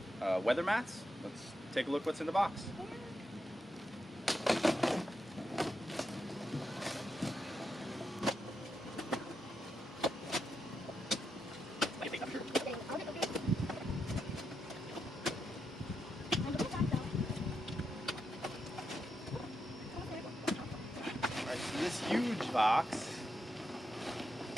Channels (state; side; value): normal; both; correlation 0.84